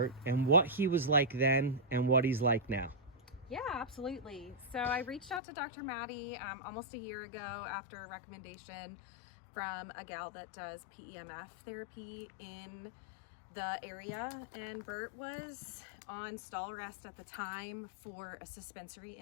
and what he was like then and what he's like now. Yeah, absolutely. So I reached out to Dr. Maddie almost a year ago after a recommendation from a gal that does PEMF therapy in the area, and Bert was on stall rest at the time for a suspensory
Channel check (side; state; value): right; drops out; at 5.4 s